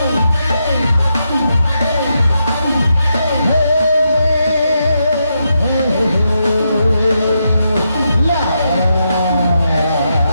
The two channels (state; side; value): inverted; both; correlation -0.83